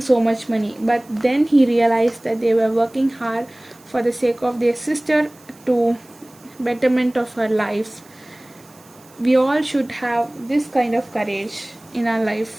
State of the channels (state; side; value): noise; right; hiss, 27 dB below the sound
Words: so much money. But then he realized that they were working hard for the sake of their sister to betterment of her life. We all should have this kind of courage in our